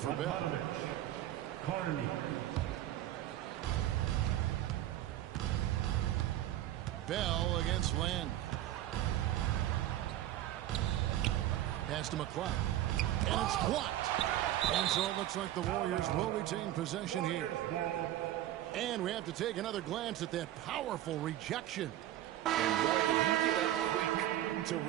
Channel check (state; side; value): quieter; left; 13.4 dB